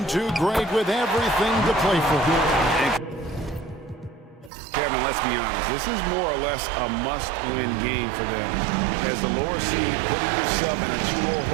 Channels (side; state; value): left; drops out; at 4.5 s